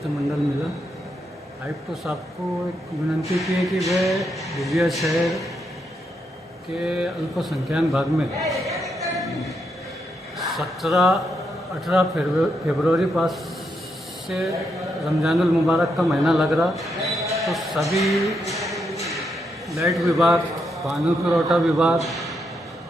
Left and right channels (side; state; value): both; normal; correlation 0.80